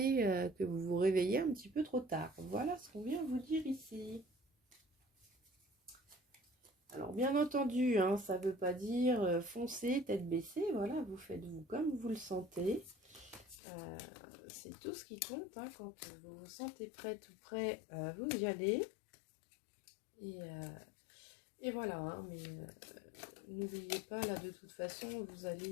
que vous vous réveillez un petit peu trop tard. Voilà ce qu'on vient vous dire ici. Alors bien entendu, hein, ça ne veut pas dire foncer, tête baissée, voilà, vous faites vous comme vous le sentez. C'est tout ce qui compte, hein, quand vous vous sentez prête ou prêt, vous y allez. Et voilà, hein, mais n'oubliez pas, là de toute façon, vous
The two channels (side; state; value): right; drops out; at 13.6 s